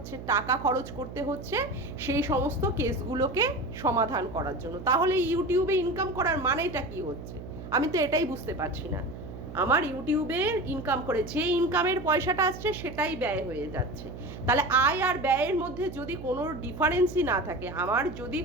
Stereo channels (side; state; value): right; noise; hum, 11 dB below the sound